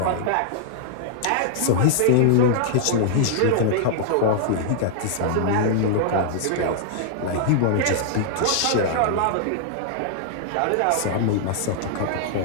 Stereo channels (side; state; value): both; different; correlation -0.01